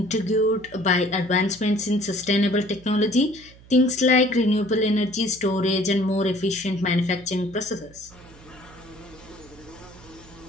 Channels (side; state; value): right; noise; hum, 23 dB below the sound